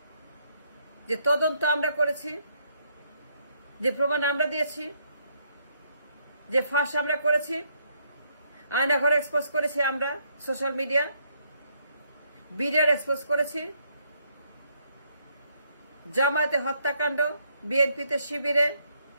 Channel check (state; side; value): inverted; both; correlation -0.72